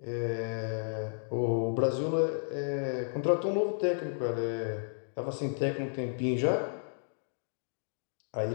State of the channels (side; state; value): right; silent; digital silence